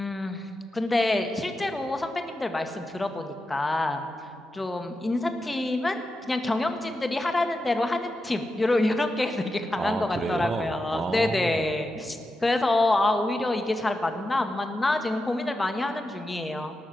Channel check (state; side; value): normal; both; correlation 0.89